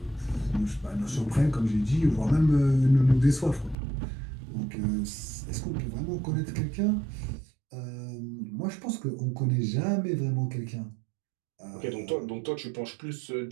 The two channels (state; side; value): drops out; left; at 3.8 s